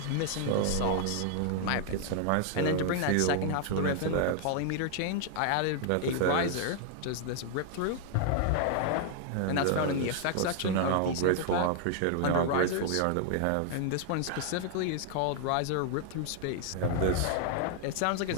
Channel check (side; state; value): both; different; correlation 0.00